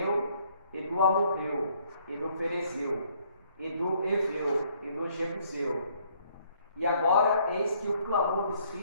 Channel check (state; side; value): inverted; both; correlation -0.65